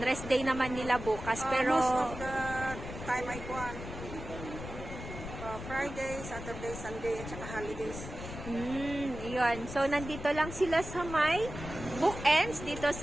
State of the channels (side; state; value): left; noise; rumble, 10 dB below the sound